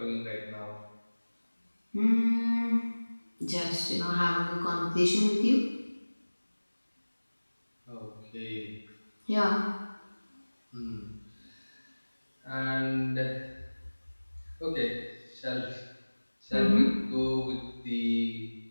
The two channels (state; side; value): inverted; both; correlation -1.00